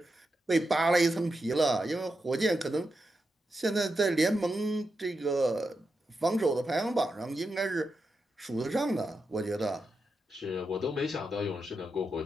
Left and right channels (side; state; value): both; normal; correlation 0.87